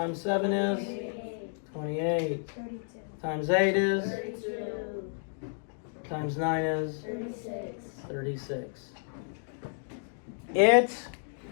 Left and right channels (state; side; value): silent; right; digital silence